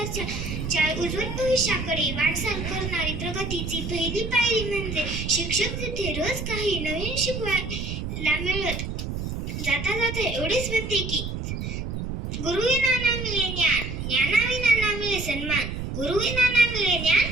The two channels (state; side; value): noise; right; rumble, 5 dB below the sound